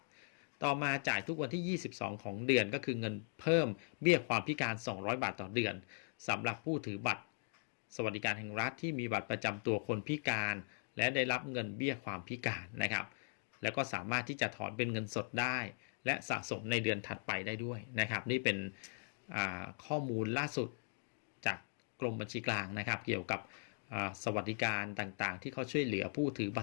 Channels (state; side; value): silent; right; digital silence